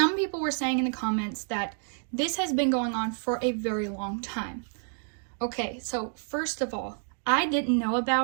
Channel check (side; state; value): left; silent; 59 dB below the other